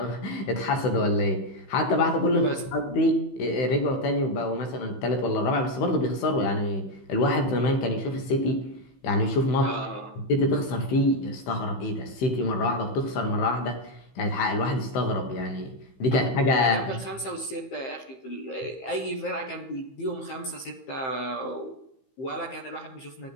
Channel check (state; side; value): late; right; 15 ms